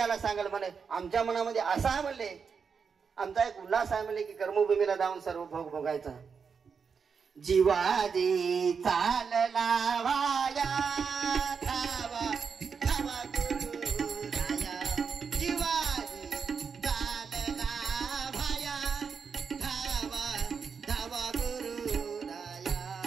सांगेल म्हणे. आमच्या मनामध्ये असा आहे म्हणले, आमचा एक उल्हास आहे म्हणले की कर्मभूमीला जाऊन सर्व भोग भोगायचा. जीवाजी चालला वाया धावा धावा गुरु राया. जीवाजी चालला वाया धावा धावा गुरु राया.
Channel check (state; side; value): quieter; left; 5.9 dB